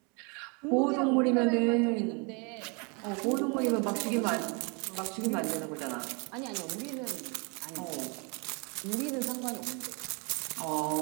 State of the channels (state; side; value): quieter; left; 33.0 dB